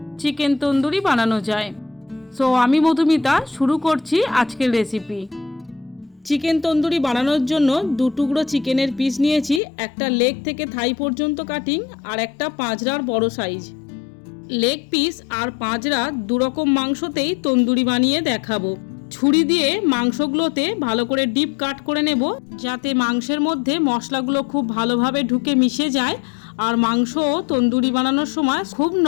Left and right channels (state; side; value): drops out; right; at 9.6 s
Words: চিকেন তন্দুরি বানানো যায়। সো আমি মধুমিতা শুরু করছি আজকের রেসিপি। চিকেন তন্দুরি বানানোর জন্য 2 টুকরো চিকেনের পিস নিয়েছি, একটা লেগ থেকে থাই পর্যন্ত কাটিং আর একটা পাঁজরার বড় সাইজ। লেগ পিস আর পাঁজরা দুরকম মাংসতেই তন্দুরি বানিয়ে দেখাবো। ছুরি দিয়ে মাংসগুলোতে ভালো করে ডিপ কাট করে নেব, যাতে মাংসের মধ্যে মশলাগুলো খুব ভালোভাবে ঢুকে মিশে যায় আর মাংস তন্দুরি বানানোর সময় খুব